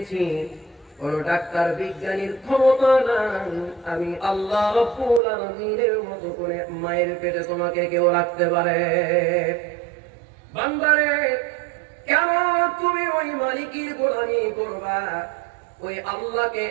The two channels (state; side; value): drops out; left; at 5.2 s